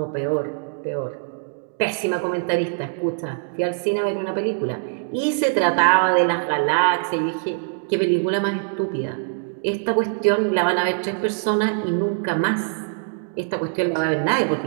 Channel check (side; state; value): left; silent; digital silence